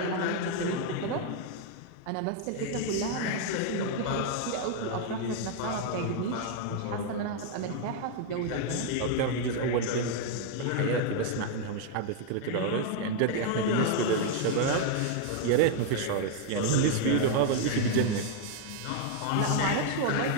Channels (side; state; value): both; different; correlation 0.00